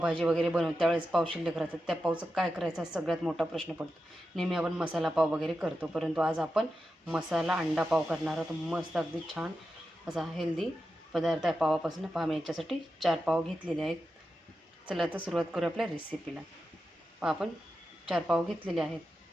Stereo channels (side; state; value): both; normal; correlation 0.90